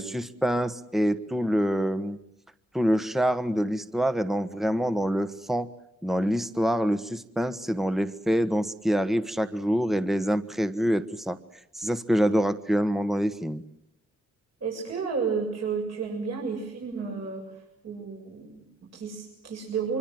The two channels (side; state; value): both; normal; correlation 0.87